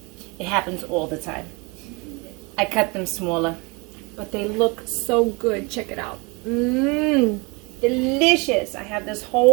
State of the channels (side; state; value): left; quieter; 28.5 dB